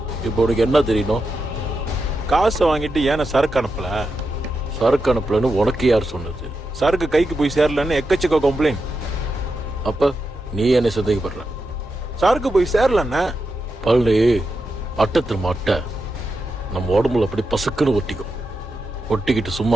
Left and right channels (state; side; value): normal; both; correlation 0.87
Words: இப்போ உனக்கு என்ன தெரியணும்? காசை வாங்கிட்டு ஏன சரக்கு அனுப்பல? சரக்கு அனுப்பலன்னு உனக்கு யார் சொன்னது? சரக்கு கைக்கு போய் சேரலன்னு எக்கச்சக்க கம்ப்ளைண்ட். அப்ப நீ என்ன சந்தேகப்படுற? சரக்கு போய் சேரலன்னா பழனி, அட்டத்தில் அட்டை நம்ம உடம்புல அப்படி பசுக்குன்னு ஒட்டிக்கும். ஒட்டிக்கிட்டு